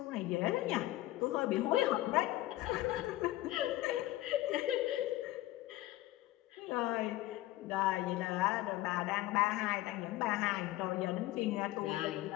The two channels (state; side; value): quieter; right; 16.5 dB